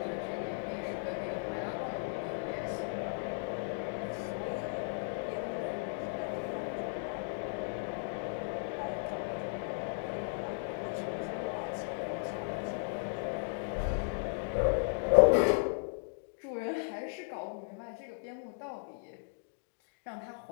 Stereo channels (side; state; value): right; silent; digital silence